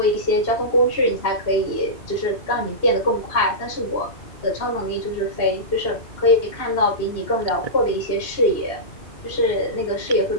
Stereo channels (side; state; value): right; late; 2.8 ms